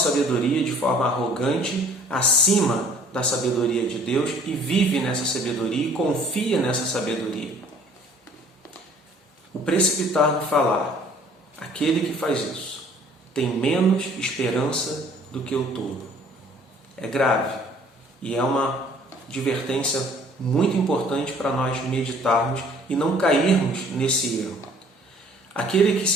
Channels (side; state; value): both; normal; correlation 0.55